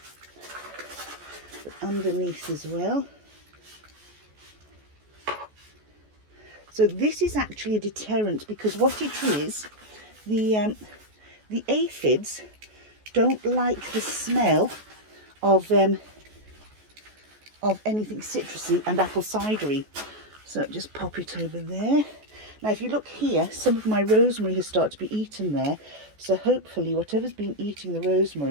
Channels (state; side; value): late; left; 14 ms